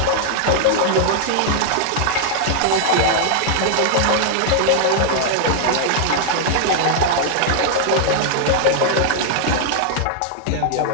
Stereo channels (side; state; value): both; different; correlation -0.01